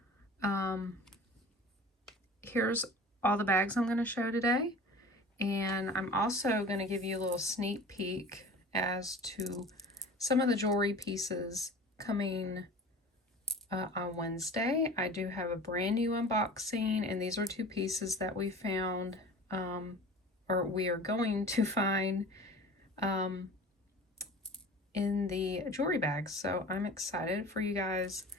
here's all the bags I'm going to show today, and I'm also going to give you a little sneak peek as to some of the jewelry pieces coming on Wednesday. I do have a brand new unboxing, and these are two pieces that we found, or we are going to find in the jewelry bags. So I'm excited for you guys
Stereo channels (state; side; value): normal; both; correlation 0.40